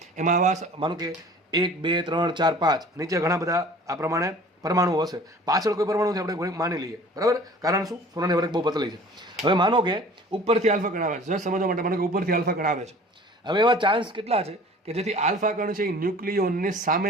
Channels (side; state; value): both; normal; correlation 0.46